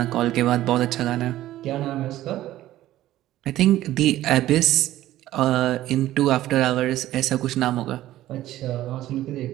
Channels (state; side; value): quieter; left; 14.5 dB